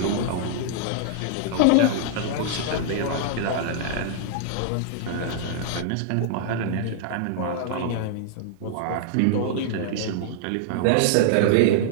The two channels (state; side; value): different; both; correlation -0.01